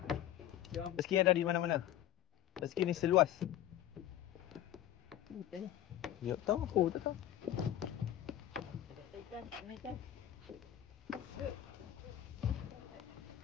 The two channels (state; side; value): quieter; right; 12.1 dB